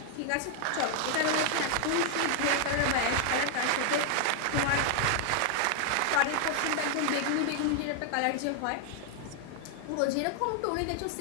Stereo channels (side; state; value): both; different; correlation 0.00